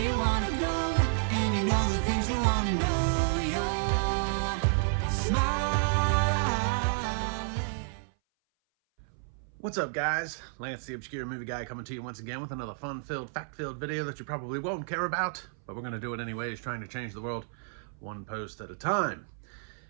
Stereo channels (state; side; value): silent; left; 57 dB below the other